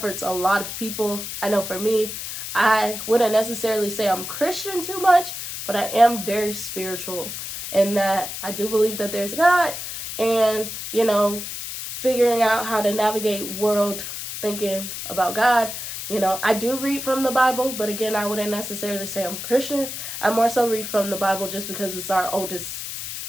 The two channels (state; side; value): noise; left; hiss, 7 dB below the sound